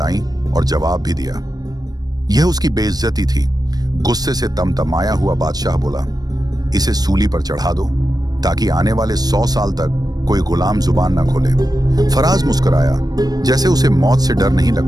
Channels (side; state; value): left; late; 0.19 ms